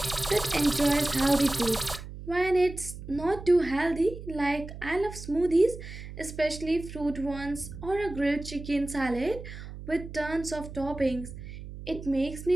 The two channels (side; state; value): right; noise; hum, 12 dB below the sound